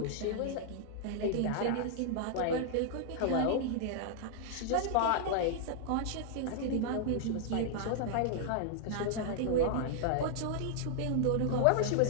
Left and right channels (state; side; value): different; both; correlation -0.01